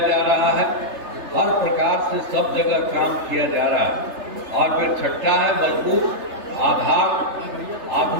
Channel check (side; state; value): left; late; 3.3 ms